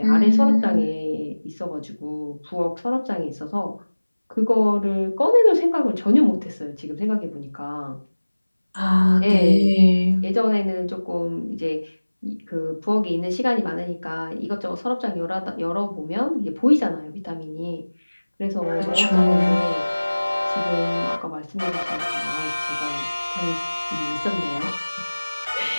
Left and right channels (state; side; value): inverted; both; correlation -1.00